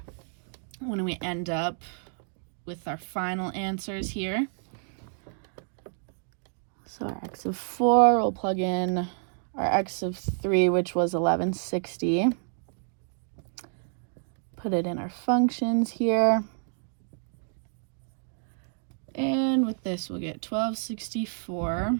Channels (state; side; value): silent; left; 58 dB below the other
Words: when we end up with our final answers here. So our x of 4, we'll plug in our x of 3, which was 1160. Put it in our functions here. And with this, we'll get 1264.